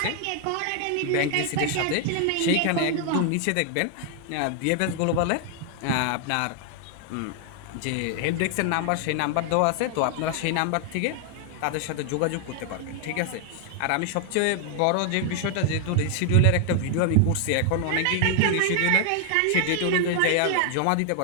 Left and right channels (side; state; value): both; different; correlation 0.00